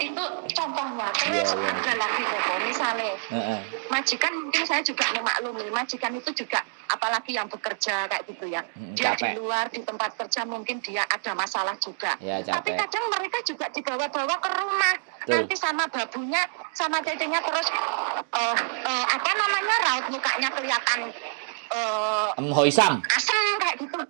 itu contohnya. Terus ada lagi, Koko, misalnya majikan, mungkin saya juga memaklumi majikan itu juga apalagi yang bekerja kayak gitu ya, dia capek. Di luar di tempat kerja mungkin dia ada masalah juga tapi kadang mereka juga dibawa-bawa ke rumah. Nanti sama babunya sama cecenya terus raut mukanya kelihatan Hoisam asam kayak gitu.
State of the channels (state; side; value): silent; left; digital silence